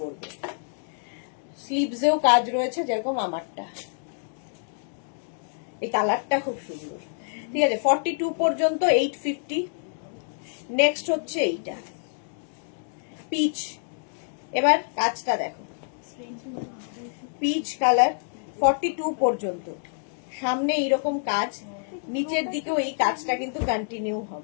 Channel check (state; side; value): silent; right; digital silence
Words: করবে। স্লিভসেও কাজ রয়েছে যেরকম আমারটা। এই কালারটা খুব সুন্দর, ঠিক আছে। 42 পর্যন্ত 850। নেক্সট হচ্ছে এইটা পিচ। এবার কাজটা দেখো, পিচ কালার, 42 পর্যন্ত। সামনে এইরকম কাজ, নিচের দিকেও এই কাজটা কিন্তু কন্টিনিউ